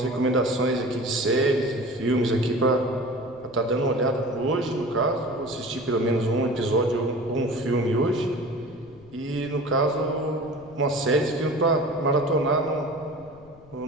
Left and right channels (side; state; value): left; noise; rumble, 23 dB below the sound